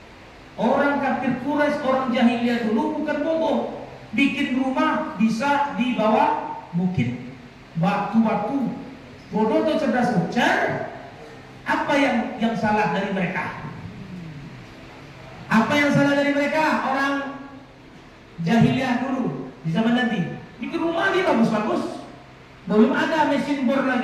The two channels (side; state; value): both; identical; correlation 1.00